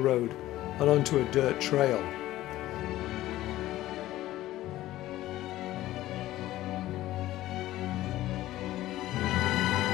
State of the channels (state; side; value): quieter; right; 15.3 dB